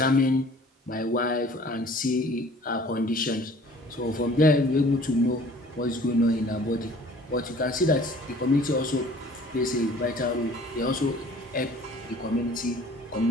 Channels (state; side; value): normal; both; correlation 0.51